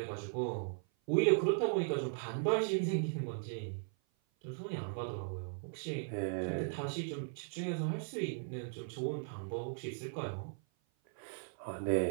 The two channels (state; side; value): silent; left; 53 dB below the other